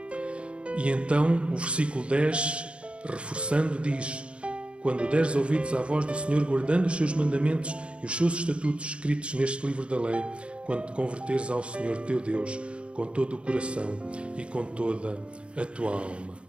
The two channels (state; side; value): late; left; 0.058 ms